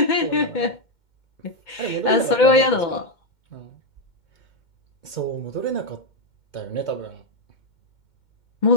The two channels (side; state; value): right; late; 2.2 ms